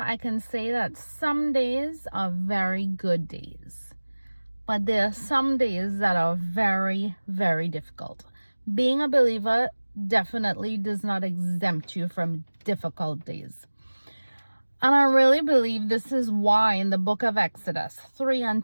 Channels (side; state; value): both; inverted; correlation -1.00